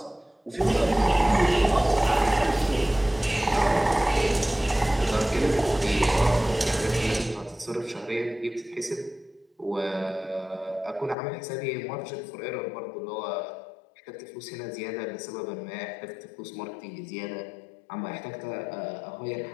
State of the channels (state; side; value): drops out; right; at 11.2 s